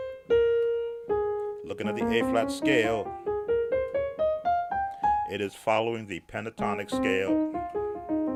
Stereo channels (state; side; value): identical; both; correlation 1.00